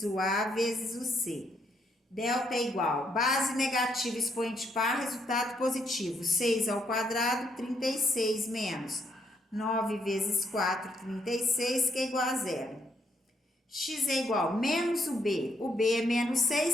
o a vezes o c. Delta é igual, base negativa, expoente par, resultado positivo. 6 ao quadrado, 36 menos 9 vezes 4, 36, que é igual a zero. X é igual menos o b é menos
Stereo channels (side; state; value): both; normal; correlation 0.73